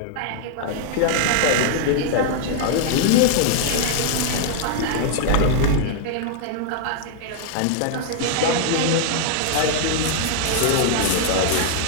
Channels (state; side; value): different; both; correlation 0.00